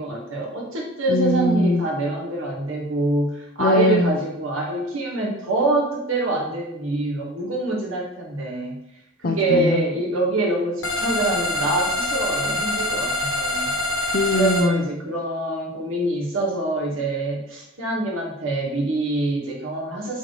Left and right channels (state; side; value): normal; both; correlation 0.35